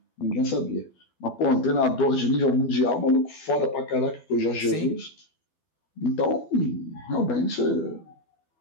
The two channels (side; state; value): right; late; 12 ms